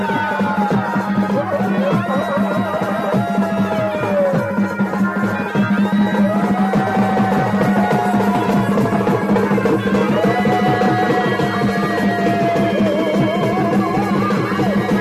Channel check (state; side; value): identical; both; correlation 1.00